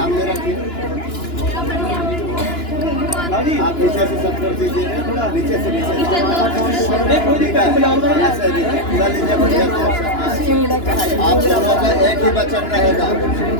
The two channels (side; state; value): right; late; 2.9 ms